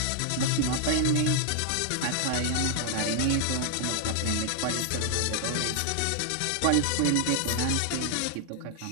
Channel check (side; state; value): both; different; correlation 0.00